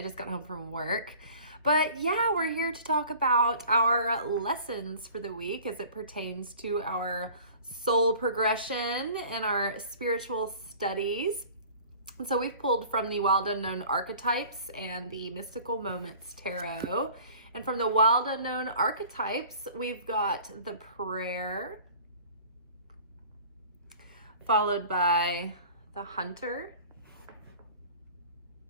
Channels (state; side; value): inverted; both; correlation -0.46